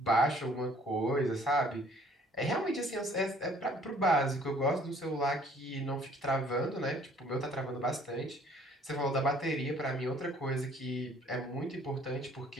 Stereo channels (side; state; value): both; normal; correlation 0.57